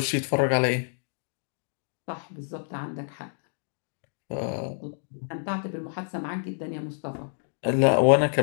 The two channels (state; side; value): silent; right; digital silence